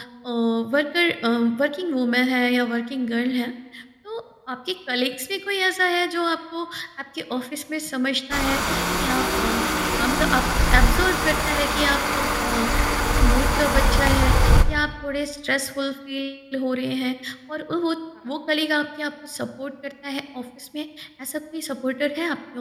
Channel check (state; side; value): identical; both; correlation 1.00